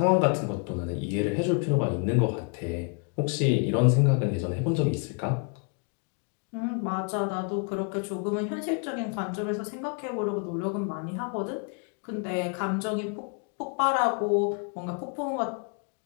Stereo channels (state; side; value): quieter; right; 39.2 dB